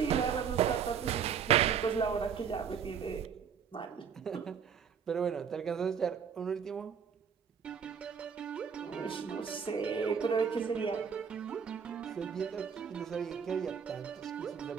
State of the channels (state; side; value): quieter; left; 7.2 dB